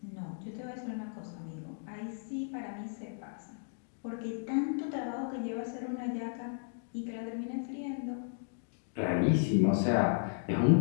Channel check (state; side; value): silent; right; digital silence